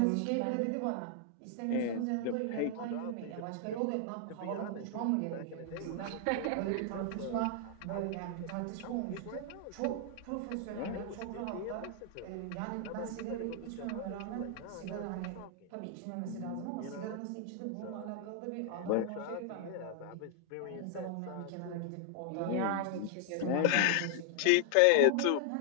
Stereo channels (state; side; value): different; both; correlation 0.00